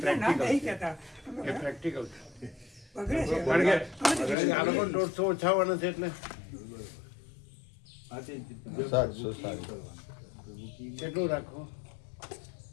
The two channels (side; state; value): right; drops out; at 4.4 s